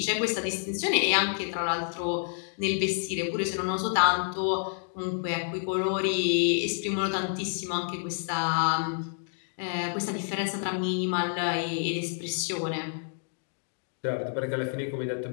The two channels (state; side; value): silent; right; digital silence